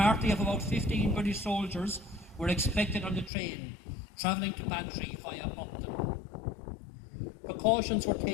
of about 15 British soldiers were expected on the train, travelling to Bantry via Upton. Precautions were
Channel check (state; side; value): drops out; right; at 3.3 s